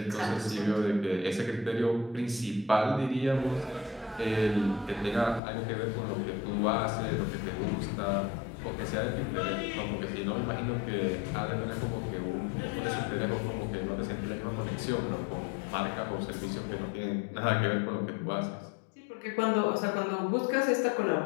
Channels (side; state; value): right; drops out; at 5.4 s